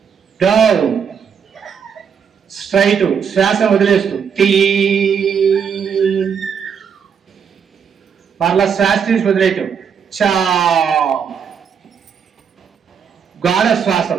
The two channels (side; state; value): left; quieter; 7.0 dB